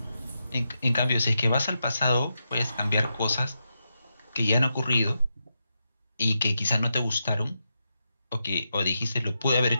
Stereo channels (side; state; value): both; inverted; correlation -0.86